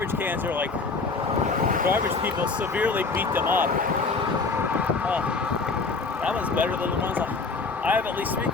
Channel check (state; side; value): quieter; right; 4.3 dB